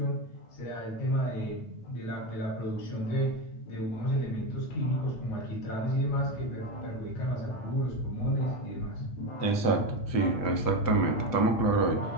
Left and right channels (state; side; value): late; right; 8.2 ms